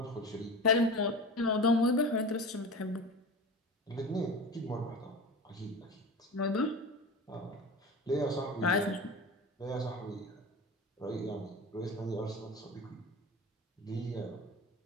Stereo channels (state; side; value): normal; both; correlation 0.31